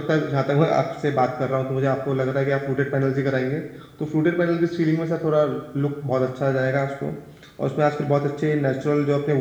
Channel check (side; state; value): both; identical; correlation 1.00